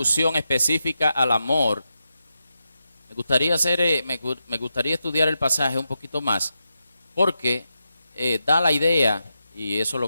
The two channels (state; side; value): inverted; both; correlation -0.87